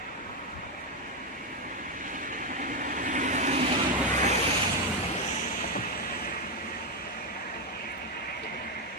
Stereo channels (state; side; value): normal; both; correlation 0.06